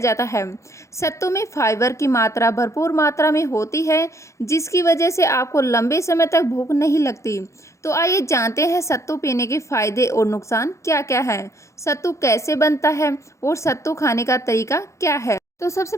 है। सत्तू में फाइबर की मात्रा भरपूर मात्रा में होती है जिसकी वजह से आपको लंबे समय तक भूख नहीं लगती। तो आइए जानते हैं सत्तू पीने के फायदे और नुकसान क्या क्या है, सत्तू कैसे बनता है और सत्तू खाने का तरीका क्या है। तो सबसे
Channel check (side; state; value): right; late; 0.14 ms